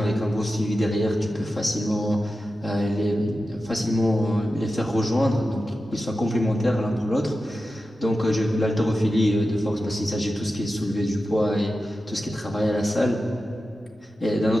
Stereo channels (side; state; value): both; normal; correlation 0.92